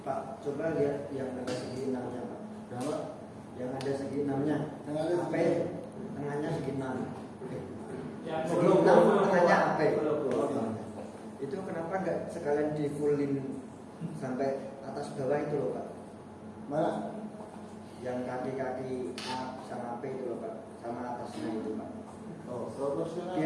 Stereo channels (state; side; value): identical; both; correlation 1.00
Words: Pak, coba lihat yang ada segi 6-nya, Pak. Kenapa? Yang ada segi 6-nya. Yang ada AP, segi- tengahnya segi 6. Ya, Sebelum 6, tengahnya AP. Belum. Itu kenapa nggak sekalian di fullin sampai atas bawah itu loh, Pak? Mana? Yang kaki-kaki A sama P itu loh, Pak. Sama atasnya itu, Pak. Oh, proporsional.